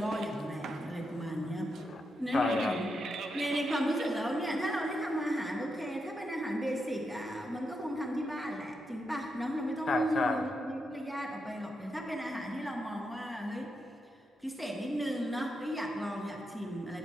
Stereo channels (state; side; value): normal; both; correlation 0.84